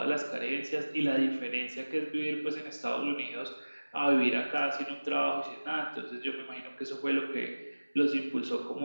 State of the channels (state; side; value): inverted; both; correlation -1.00